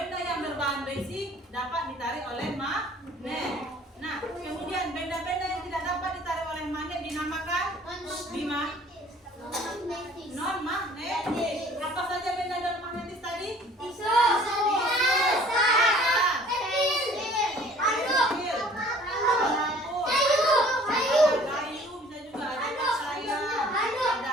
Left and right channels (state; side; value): normal; both; correlation 0.52